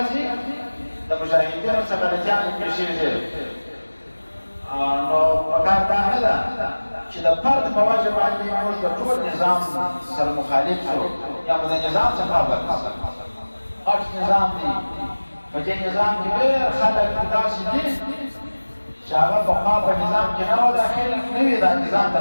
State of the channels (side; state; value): both; inverted; correlation -1.00